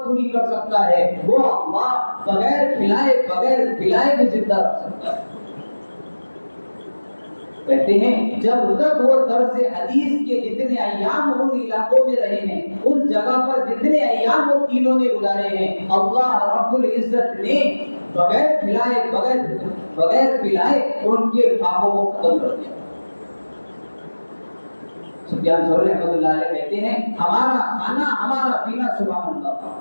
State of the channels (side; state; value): both; inverted; correlation -1.00